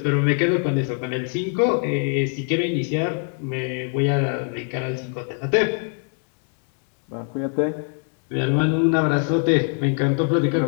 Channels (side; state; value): right; quieter; 39.4 dB